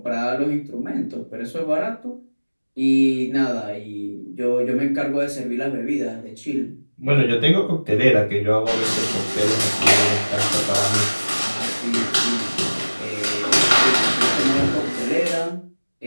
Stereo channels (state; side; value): inverted; both; correlation -1.00